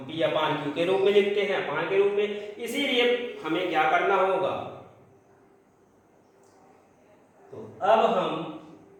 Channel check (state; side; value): identical; both; correlation 1.00